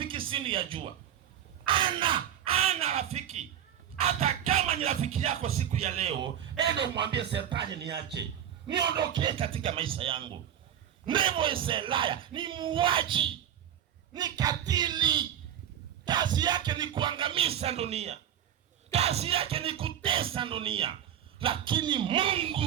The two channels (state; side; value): quieter; left; 10.1 dB